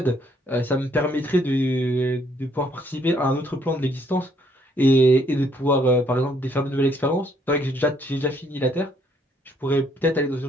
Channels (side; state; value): both; normal; correlation 0.67